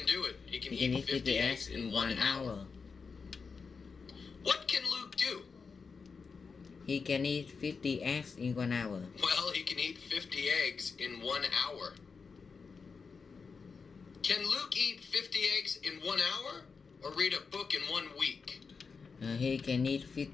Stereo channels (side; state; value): right; quieter; 5.2 dB